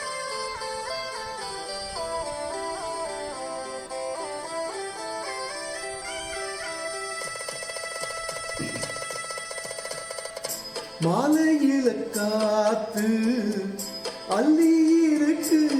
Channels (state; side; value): identical; both; correlation 1.00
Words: மாலையில காத்து அள்ளி இருக்கு